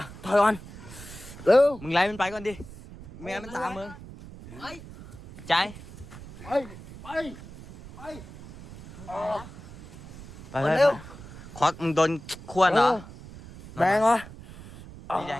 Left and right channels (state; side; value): noise; right; rumble, 16 dB below the sound